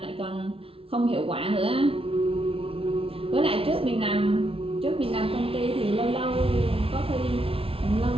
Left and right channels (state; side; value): late; left; 0.27 ms